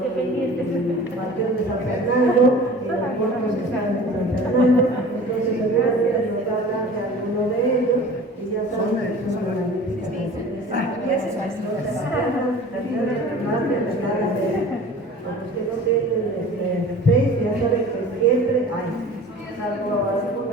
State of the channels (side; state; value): both; normal; correlation 0.42